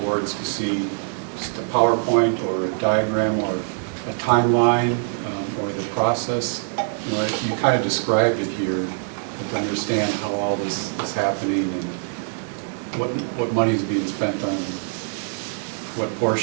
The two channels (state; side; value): silent; left; 62 dB below the other